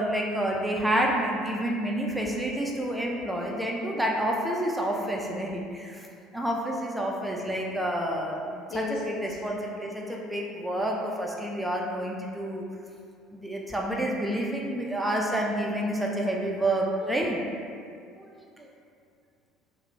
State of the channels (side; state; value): both; normal; correlation 0.66